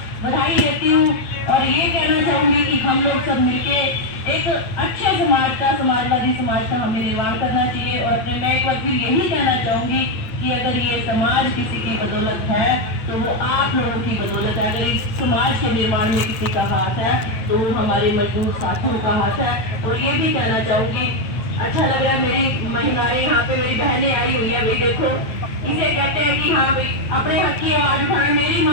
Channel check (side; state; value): right; late; 8.9 ms